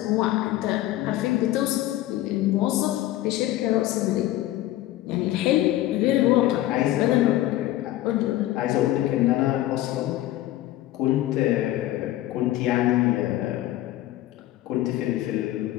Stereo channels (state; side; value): quieter; right; 15.0 dB